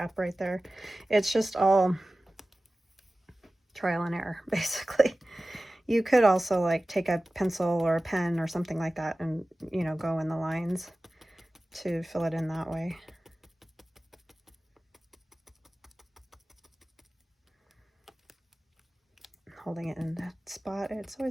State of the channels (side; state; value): both; normal; correlation 0.96